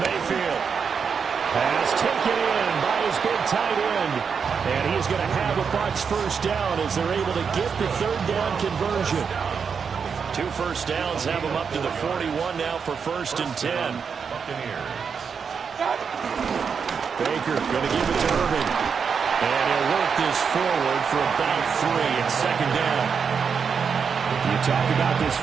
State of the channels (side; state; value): left; quieter; 6.2 dB